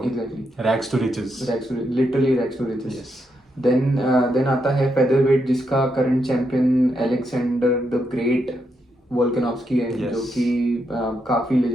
exactly rags to riches. Literally rags to riches. Yes. Then आता है फेदर वेट, जिसका current champion Alexander the great Volkanovski है। Yes. जो कि काफी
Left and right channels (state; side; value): normal; both; correlation 0.81